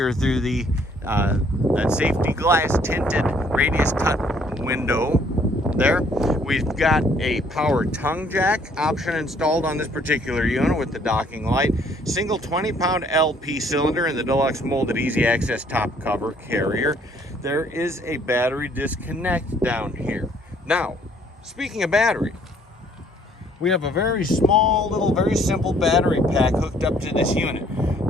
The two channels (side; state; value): both; normal; correlation 0.62